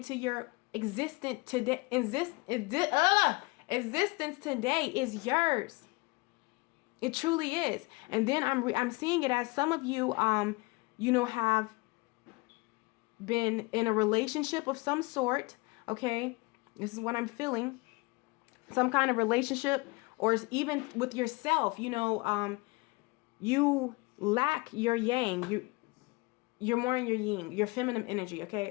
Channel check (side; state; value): right; quieter; 25.6 dB